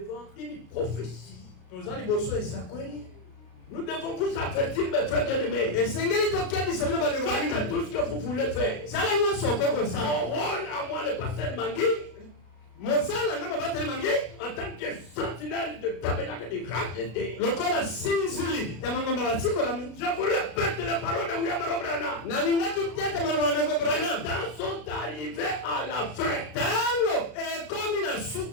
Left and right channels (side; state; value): right; late; 33 ms